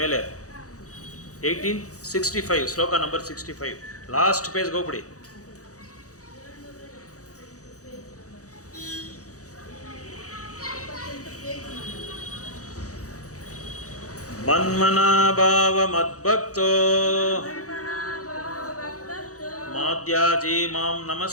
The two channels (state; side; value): late; right; 0.66 ms